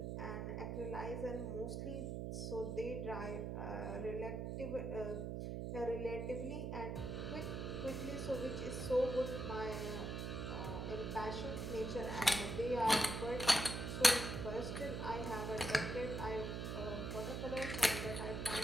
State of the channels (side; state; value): right; noise; hum, 3 dB below the sound